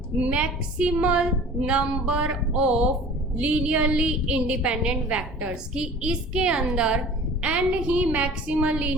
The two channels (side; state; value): both; normal; correlation 0.44